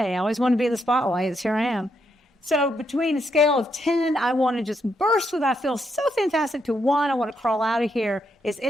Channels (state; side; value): normal; both; correlation 0.78